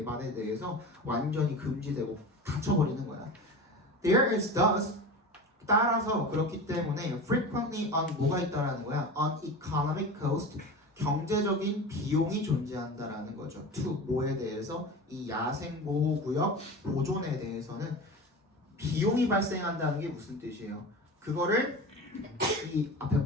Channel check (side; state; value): both; normal; correlation 0.30